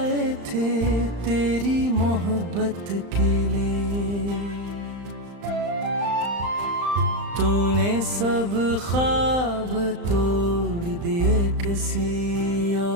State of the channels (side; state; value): left; late; 35 ms